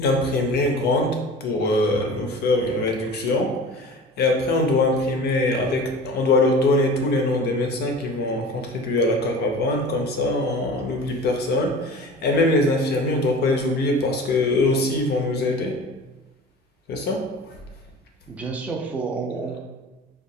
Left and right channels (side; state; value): both; normal; correlation 0.38